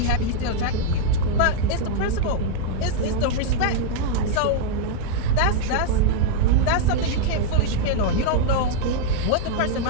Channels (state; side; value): different; both; correlation -0.01